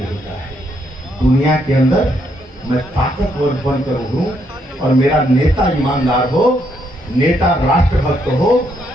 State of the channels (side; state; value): both; normal; correlation 0.74